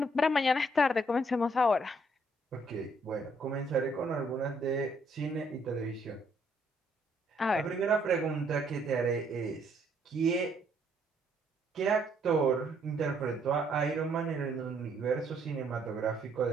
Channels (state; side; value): normal; both; correlation 0.69